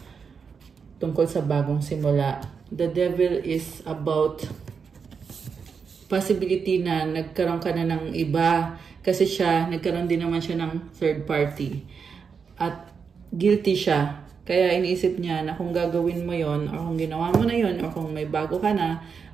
tungkol sa bagong simula. The Devil is about possibility na nagkaroon ka na ng iba kasi nagkaroon din naman siya ng third party. At guilty siya. Kaya iniisip niya na kung gagawin mo yon or kung ginawa mo na yon or kung may bago ka na,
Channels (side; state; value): left; quieter; 5.9 dB